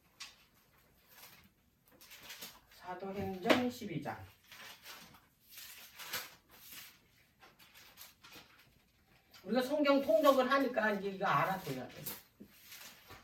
사도행전 12장. 우리가 성경 통독을 하니까 이제 이거 알아둬야 돼.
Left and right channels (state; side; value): identical; both; correlation 1.00